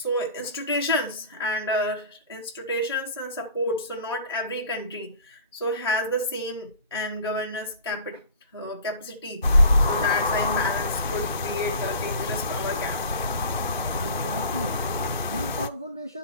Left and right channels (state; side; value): inverted; both; correlation -0.42